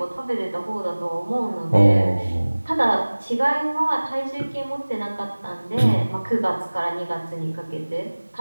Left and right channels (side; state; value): both; inverted; correlation -1.00